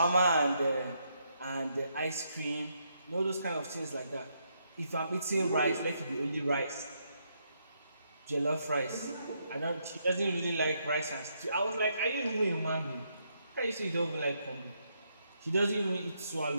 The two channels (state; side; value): inverted; both; correlation -0.77